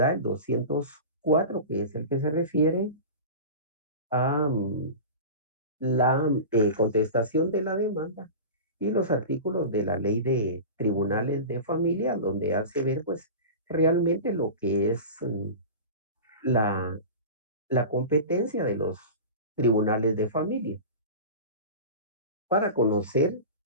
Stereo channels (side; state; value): both; inverted; correlation -0.31